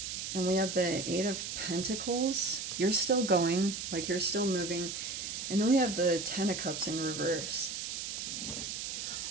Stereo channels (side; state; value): right; noise; hiss, 5 dB below the sound